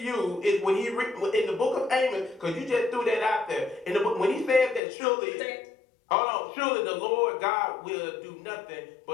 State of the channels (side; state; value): right; drops out; at 4.8 s